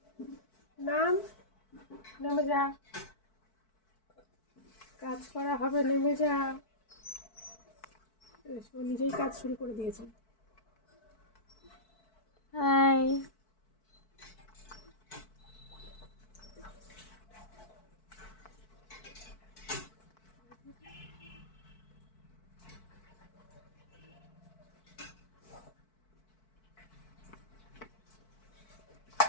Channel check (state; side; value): late; right; 4.6 ms